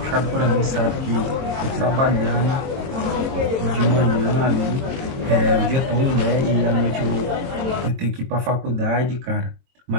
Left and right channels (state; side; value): late; left; 22 ms